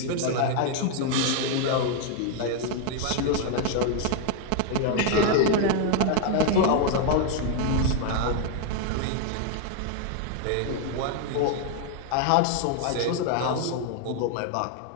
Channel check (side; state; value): both; different; correlation 0.00